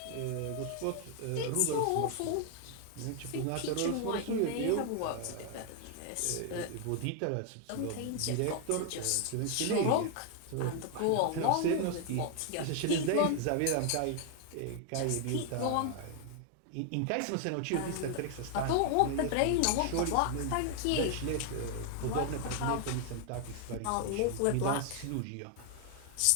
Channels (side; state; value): both; different; correlation 0.00